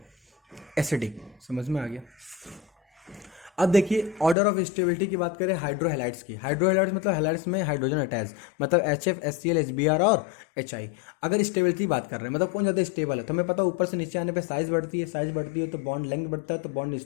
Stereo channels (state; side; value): drops out; right; at 4.4 s